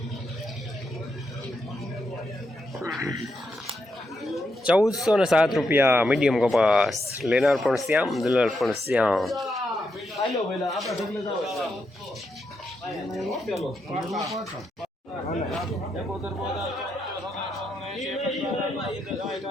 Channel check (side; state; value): both; normal; correlation 0.82